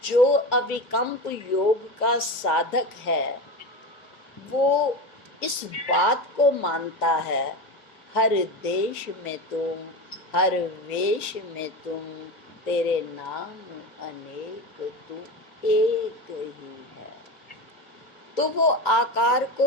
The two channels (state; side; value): late; right; 2.1 ms